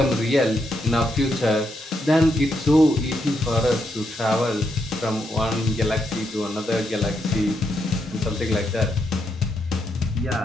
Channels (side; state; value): both; normal; correlation 0.79